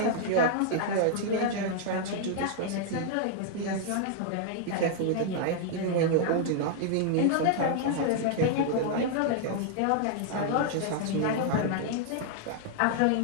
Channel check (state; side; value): different; both; correlation 0.00